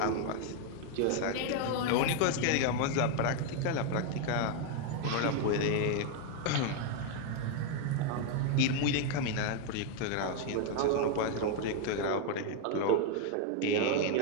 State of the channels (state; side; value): different; both; correlation 0.01